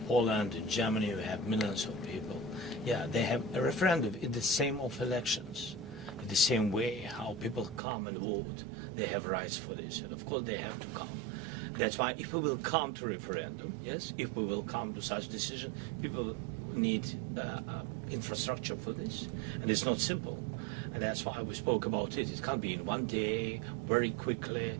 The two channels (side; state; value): left; drops out; at 7.8 s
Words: Poland, in Germany, we have millions of people. Yeah, they have a referendum in the same of elections. In the same way how people come and vote, they have rights for this. And of course they have to come. That's why if we will come to referendum, yes, if we will come to such decision, people need infrastructure for this. And it's not simple. And that's why we spoke about it. It can't be in one day, very quickly.